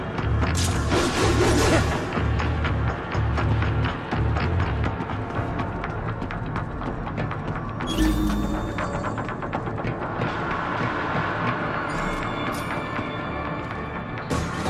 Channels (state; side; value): identical; both; correlation 1.00